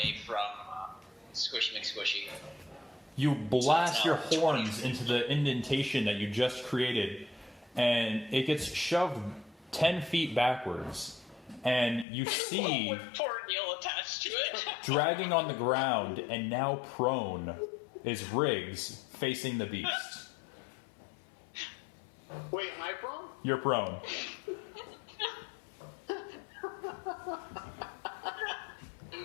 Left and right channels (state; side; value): drops out; right; at 12.1 s